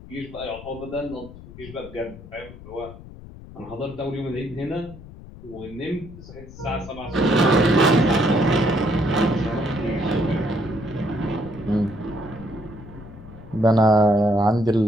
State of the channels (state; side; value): noise; left; rumble, 17 dB below the sound